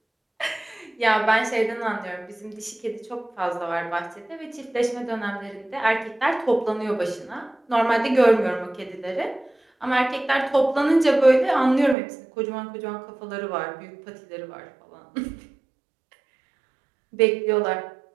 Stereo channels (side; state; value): left; drops out; at 12.0 s